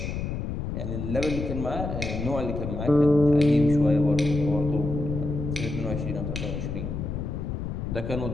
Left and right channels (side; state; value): left; noise; rumble, 4 dB below the sound